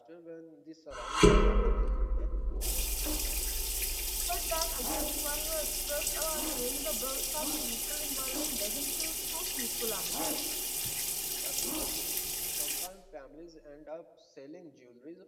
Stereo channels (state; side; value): identical; both; correlation 1.00